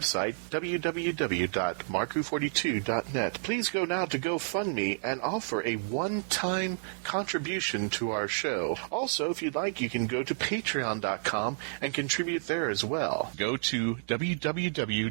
www.mark-who42.net. Please go now to GoFundMe and offer a one-time contribution to our show. Also, if you'd like, you can go to patreon.com and contribute there as well. Go to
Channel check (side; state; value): left; silent; digital silence